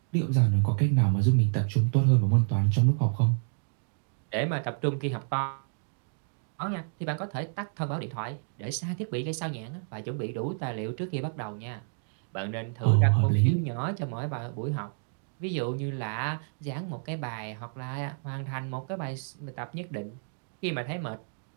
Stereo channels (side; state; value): left; silent; digital silence